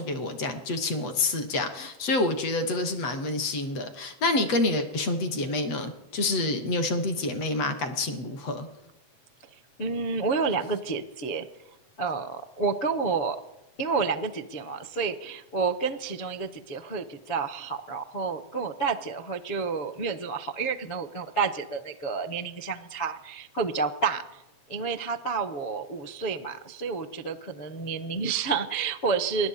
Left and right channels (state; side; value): late; right; 8.0 ms